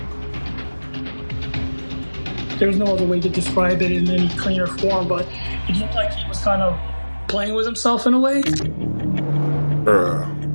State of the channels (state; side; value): inverted; both; correlation -1.00